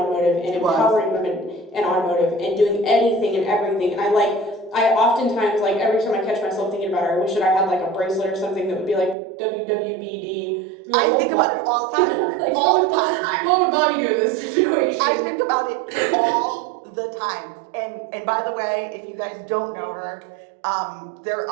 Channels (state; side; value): drops out; left; at 9.2 s